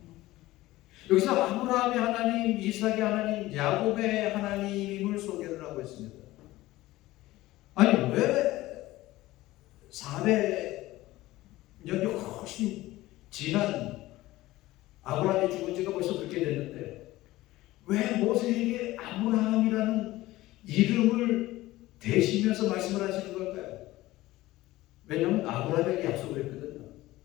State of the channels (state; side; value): quieter; right; 17.5 dB